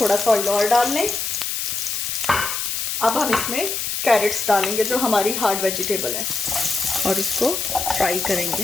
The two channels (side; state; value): left; noise; hiss, 2 dB below the sound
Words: सा ऑयल और डाल लें। अब हम इसमें कैरेट्स डालेंगे जो हमारी हार्ड वेजिटेबल है और इसको फ्राई